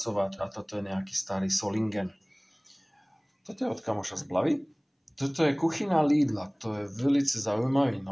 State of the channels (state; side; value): identical; both; correlation 1.00